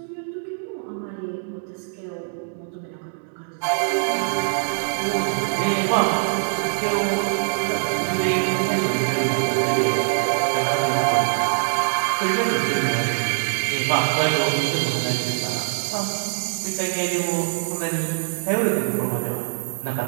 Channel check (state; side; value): silent; left; 63 dB below the other